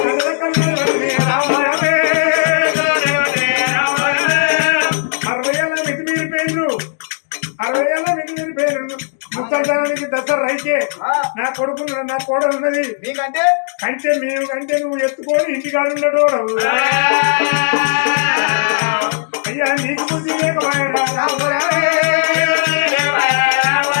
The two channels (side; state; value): right; silent; digital silence